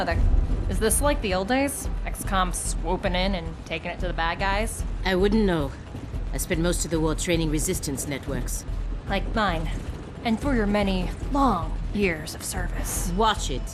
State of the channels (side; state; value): both; identical; correlation 1.00